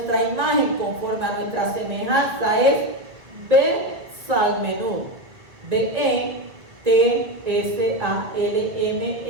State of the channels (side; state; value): left; late; 1.9 ms